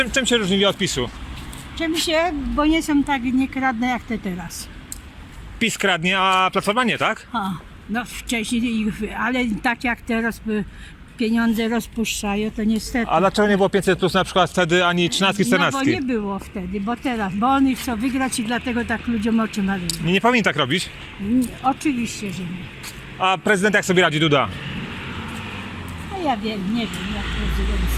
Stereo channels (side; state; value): both; identical; correlation 1.00